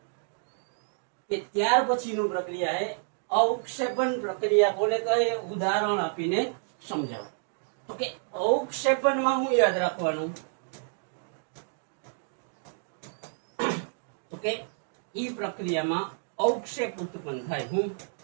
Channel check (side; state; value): left; silent; digital silence